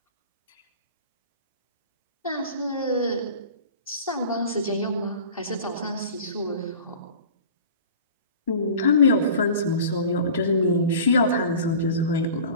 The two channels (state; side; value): inverted; both; correlation -0.41